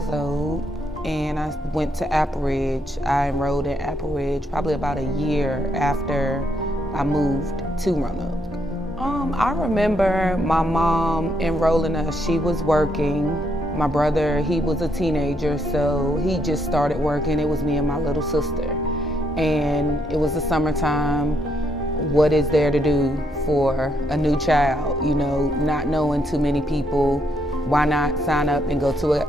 old, and I went to Apple Ridge. I enrolled in Apple Ridge probably about a year after I moved to Roanoke. I remember my mom enrolling us. She was working. My brother, he was a teenager, so he just started working. It was me and my little sister. And it was the summertime. What is there to do for a new child? You know, not knowing too many people, why not sign up and go to a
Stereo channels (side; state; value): both; normal; correlation 0.76